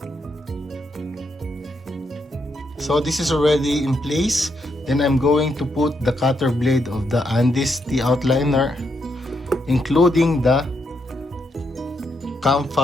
So this is already in place. Then I'm going to put the cutter blade of the Andis T outliner, including the cam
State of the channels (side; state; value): both; normal; correlation 0.79